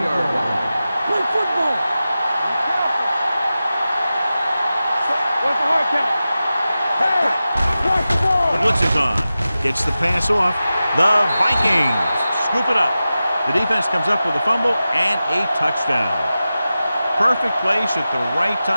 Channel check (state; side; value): inverted; both; correlation -0.94